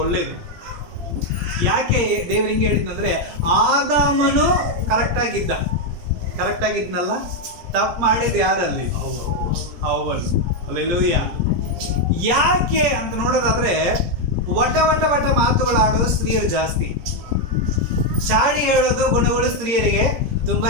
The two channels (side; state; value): left; late; 17 ms